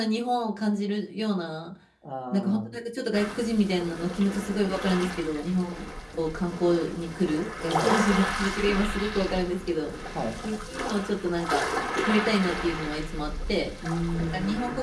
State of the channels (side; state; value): both; identical; correlation 1.00